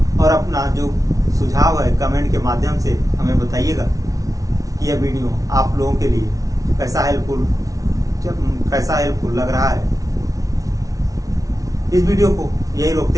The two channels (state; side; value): late; left; 0.17 ms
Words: और अपना जो सुझाव है कमेंट के माध्यम से हमें बताइएगा कि यह वीडियो आप लोगों के लिए कैसा हेल्पफुल लग रहा है। इस वीडियो को यही रोकते